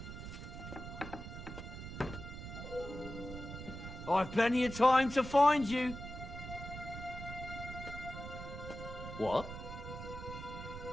I've plenty of time to find you. What?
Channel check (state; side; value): noise; right; rumble, 9 dB below the sound